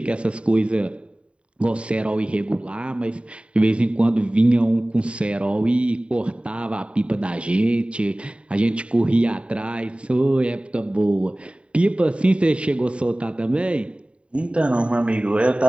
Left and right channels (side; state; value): left; late; 0.060 ms